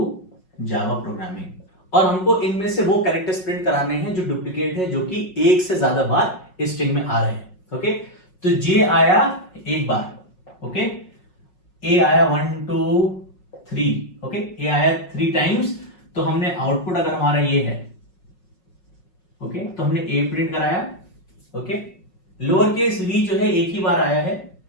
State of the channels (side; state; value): right; late; 5.5 ms